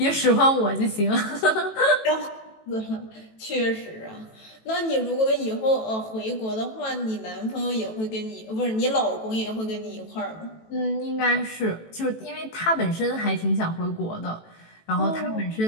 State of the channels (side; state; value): right; late; 18 ms